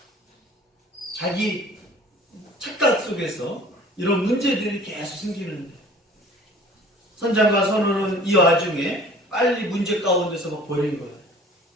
자기 착각 속에서 이런 문제들이 계속 생기는데 선장과 선원은 이 와중에 빨리 문제 가운데서 막 버린 거예요.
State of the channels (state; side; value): normal; both; correlation 0.49